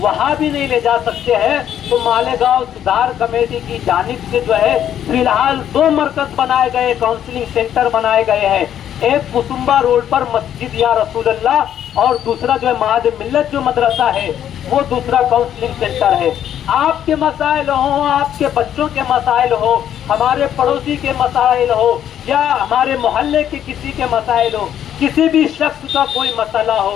بھی نہیں لے جا سکتے ہیں تو مالیگاؤں سدھار کمیٹی کی جانب سے جو ہے فی الحال 2 مرکز بنائے گئے، کاؤنسلنگ سینٹر بنائے گئے ہیں۔ ایک کسمبا روڈ پر مسجد یا رسول اللہ، اور دوسرا جو ہے معہد ملت جو مدرسہ ہے وہ دوسرا کاؤنسلنگ سینٹر ہے۔ آپ کے مسائل ہوں، آپ کے بچوں کے مسائل ہو، ہمارے پڑوسی کے مسائل ہو، یا ہمارے محلے کے کسی کے مسائل ہو، کسی بھی شخص کا کوئی مسئلہ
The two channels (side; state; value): right; quieter; 10.2 dB